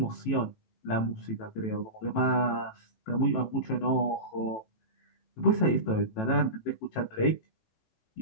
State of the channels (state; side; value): late; right; 18 ms